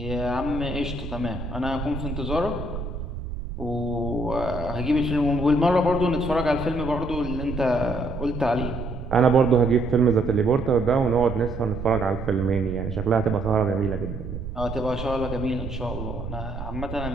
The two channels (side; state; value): right; noise; rumble, 8 dB below the sound